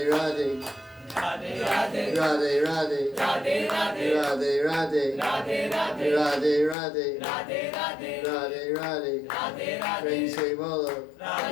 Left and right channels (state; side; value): drops out; right; at 6.8 s